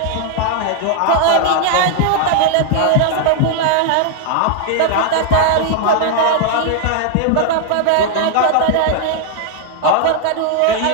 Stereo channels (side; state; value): both; different; correlation 0.00